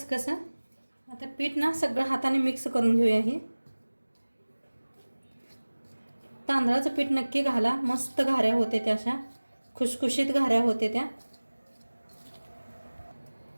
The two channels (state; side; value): inverted; both; correlation -1.00